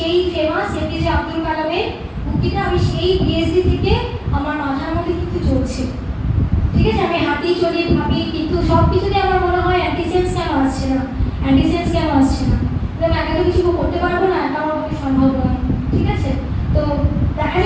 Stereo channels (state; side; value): identical; both; correlation 1.00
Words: ফেমাস এপিজে আব্দুল কালামের উক্তিটা আমি সেই পিএইচডি থেকে আমার মাথার মধ্যে কিন্তু চলছে। ঠিক আছে, আমি হাঁটি চলি ভাবি, কিন্তু সব কিছুতে আমার মনে হয় অ্যান্টিসেন্স কেন আসছে না, অ্যান্টিসেন্স কেন আসছে না, আমি একা তো কিছু করতে পারবো না, একা আমার পক্ষে সম্ভব নয়। ঠিক আছে, তো দেখা